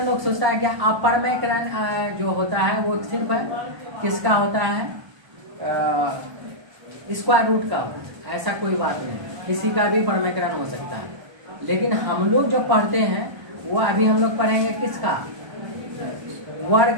लोग सोचता है कि अपरमेकरण जो होता है वो सिर्फ किसका होता है, स्क्वायर रूट का। ऐसा कोई बात नहीं, किसी का भी परमेकरण हो सकता है। लेकिन हम लोग जो पढ़ते हैं वो अभी हम लोग पढ़ेंगे किसका,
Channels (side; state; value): left; late; 1.3 ms